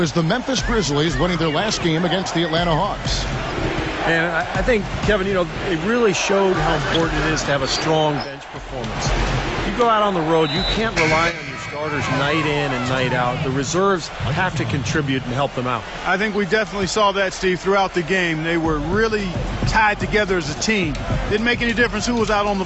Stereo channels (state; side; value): identical; both; correlation 1.00